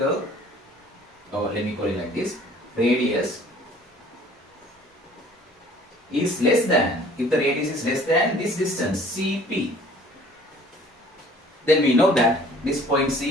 or let me call it like this, radius is less than, if the radius is less than this distance CP, then we know that this point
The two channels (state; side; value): normal; both; correlation 0.52